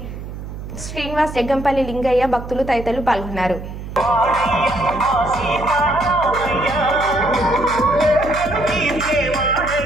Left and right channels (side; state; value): right; noise; hum, 10 dB below the sound